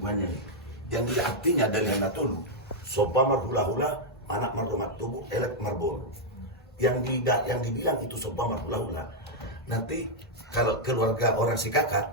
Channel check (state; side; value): normal; both; correlation -0.03